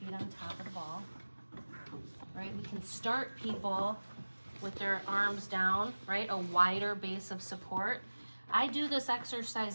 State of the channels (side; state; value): both; inverted; correlation -1.00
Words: on top of the ball. Right? We can start people with their arms down, right? A wider base of support. I do this